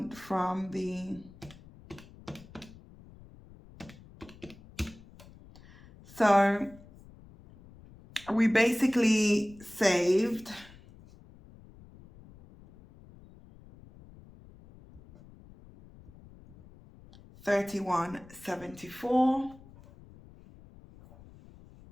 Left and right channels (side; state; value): left; noise; rumble, 22 dB below the sound